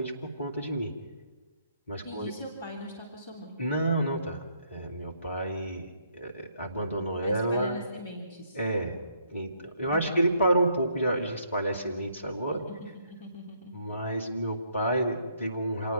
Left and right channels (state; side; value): inverted; both; correlation -0.70